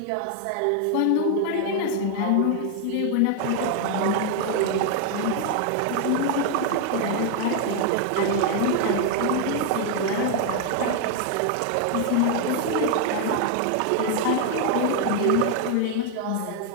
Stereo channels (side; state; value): both; different; correlation 0.00